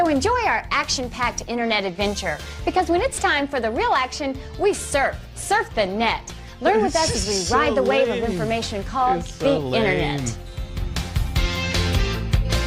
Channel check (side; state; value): both; identical; correlation 1.00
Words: enjoy our action-packed internet adventure, because when it's time for the real action, we surf the net. Learn with us as we So ride the wave of lame. information called It's the so lame. internet.